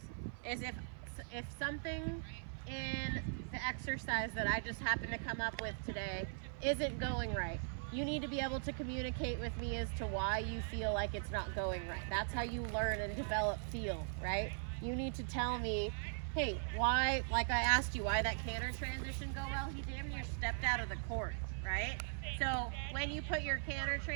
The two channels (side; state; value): left; silent; 51 dB below the other